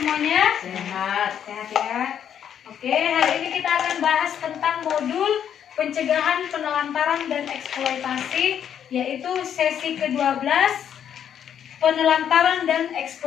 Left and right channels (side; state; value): right; quieter; 9.0 dB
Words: Sehat. Sehat ya. Oke, hari ini kita akan bahas tentang modul pencegahan penelantaran dan eksploitasi, yaitu sesi ke-12, penelantaran dan